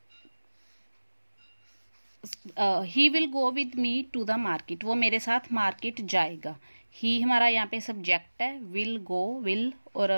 He will go with me to the market. वो मेरे साथ मार्केट जाएगा। ही हमारा यहाँ पे सब्जेक्ट है, विल गो, विल और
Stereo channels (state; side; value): inverted; both; correlation -1.00